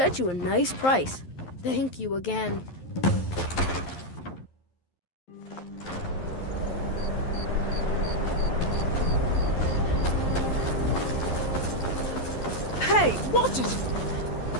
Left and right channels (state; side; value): late; right; 11 ms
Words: you a nice price. Thank you again. Hey, watch it!